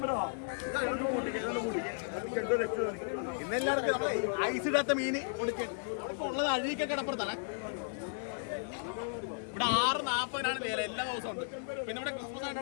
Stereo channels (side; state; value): right; silent; digital silence